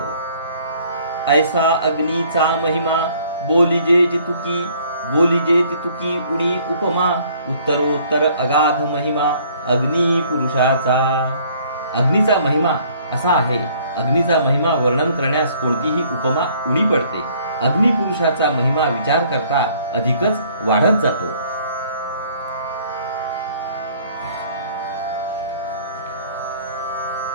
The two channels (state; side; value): inverted; both; correlation -0.59